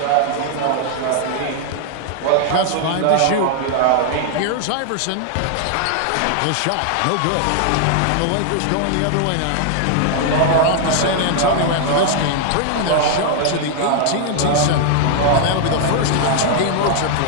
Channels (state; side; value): different; both; correlation 0.00